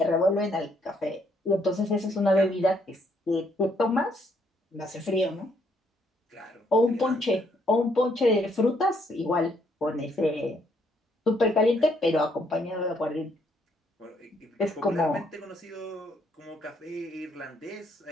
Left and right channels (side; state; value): both; normal; correlation 0.71